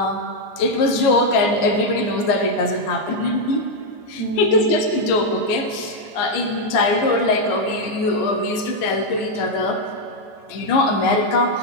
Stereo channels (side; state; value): right; late; 14 ms